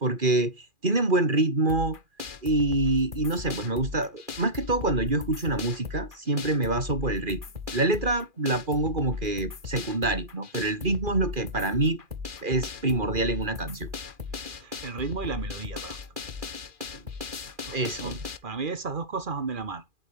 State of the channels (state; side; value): late; left; 2.4 ms